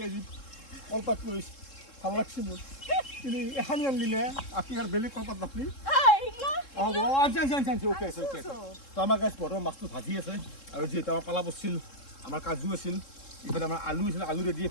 আজি কলপাত কৰিছে ভাল লাগছে মোৰ কিন্তু এখানি আনলি নে আপনি আৰ বেলেগ কলপাত নাপলি আনছি ওকে আছে তো আমাৰ গাছ বৰ্তমান মাছটো ভাজি আছে আৰু যিহেতু আমাৰ পালা বছিল আমাৰ কাজু আছিল ইফালে আমাৰ আলু আছিল আলু ৰেডি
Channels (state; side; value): late; right; 3.7 ms